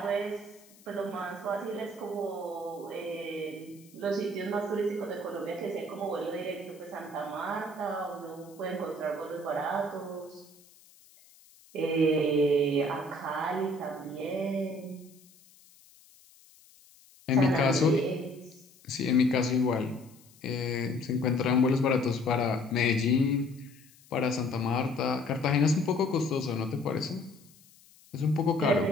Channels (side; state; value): left; noise; hiss, 26 dB below the sound